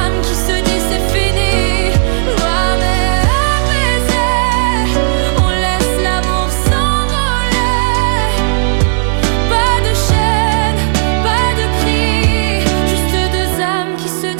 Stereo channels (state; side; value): silent; left; digital silence